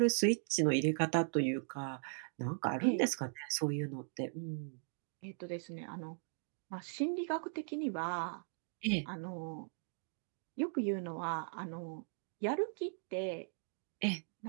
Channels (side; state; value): left; silent; digital silence